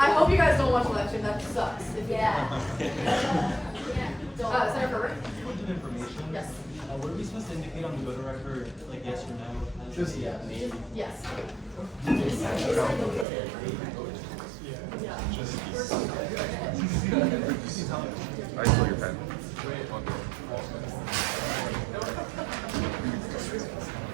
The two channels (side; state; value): left; drops out; at 13.2 s